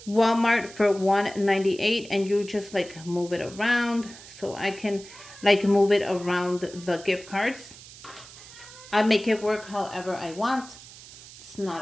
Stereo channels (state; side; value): noise; right; hiss, 18 dB below the sound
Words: Walmart for $1.98, and you just like move it around. So I can like move it around the gift cards. I make it work however I want. It's